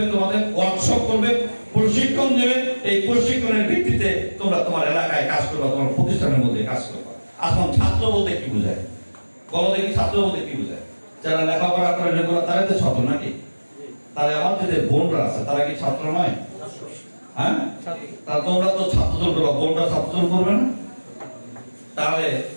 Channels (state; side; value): inverted; both; correlation -1.00